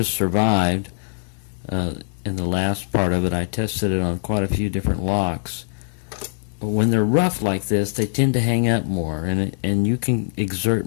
survived, in the last part of it, I tested it on quite a few different locks. When they're rough like this, they tend to hang up more, and you can exert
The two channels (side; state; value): right; silent; 64 dB below the other